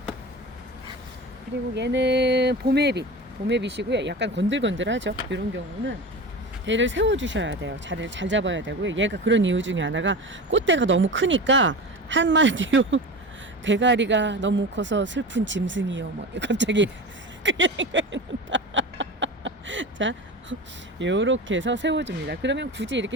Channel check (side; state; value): both; normal; correlation 0.30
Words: 그리고 얘는 봄에빗이고요. 약간 건들건들하죠. 이런 경우는 얘를 세워주셔야 돼요. 자리를 잘 잡아야 되고요. 얘가 그런 이유 중에 하나가 꽃대가 너무 크니까 한마디로 대가리가 너무 커서 슬픈 짐승이요. 갑자기 그게 생각이 난다. 자, 요렇게 해서 세워줍니다. 그러면 굳이 이렇게